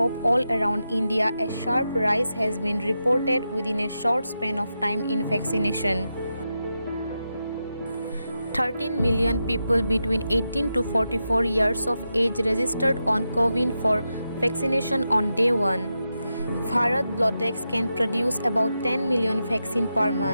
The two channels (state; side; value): inverted; both; correlation -0.88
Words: all around India. A sharp rise has been reported within a short span of time in vaccination. 13 million people between 18 to 44 years of age registered on CoWIN for vaccination on day 1. Bharat Biotech can produce about 10 million vaccine per